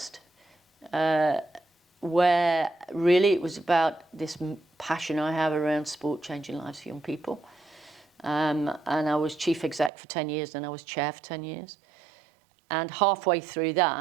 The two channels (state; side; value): drops out; left; at 9.9 s